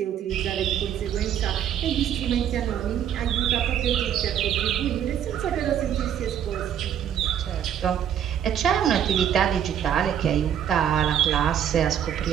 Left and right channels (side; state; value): left; quieter; 9.5 dB